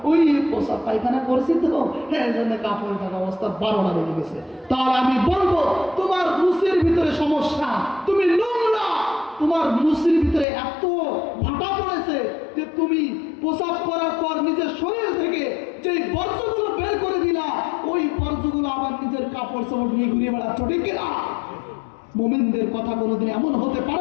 ওই পোশাক পায়খানা করছি তো এই জন্য কাপড় থাকা অবস্থা 12টা বেজে গেছে, তাহলে আমি বলবো তোমার মুসির ভিতরে সমস্যা, তুমি নোংরা, তোমার মুসির ভিতরে এত ভাটা পড়েছে যে তুমি পোশাক করার পর নিজের শরীর থেকে যে বর্জ্যগুলো বের করে দিলা, ওই বর্জ্যগুলো আবার নিজের কাপড় চোপড় নিয়ে ঘুরিয়ে বেড়াচ্ছ, ঠিক কিনা? মুমিনদের কথা কোনোদিন এমন হতে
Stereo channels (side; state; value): right; drops out; at 10.5 s